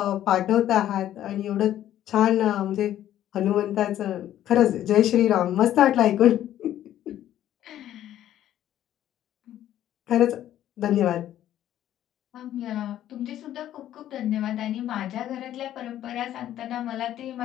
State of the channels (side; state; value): right; quieter; 12.1 dB